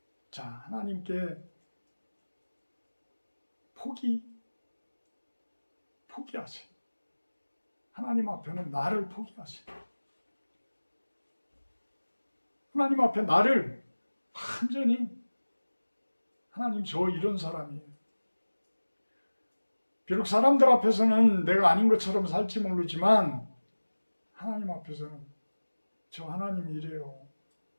자, 하나님께 포기하세요. 하나님 앞에는 나를 포기하세요. 하나님 앞에 나를 완전히 하나님 저 이런 사람이에요. 비록 사람들 앞에서는 내가 아닌 것처럼 살지 모르지만 하나님 앞에서는 저 하나님 이래요.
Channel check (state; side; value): inverted; both; correlation -1.00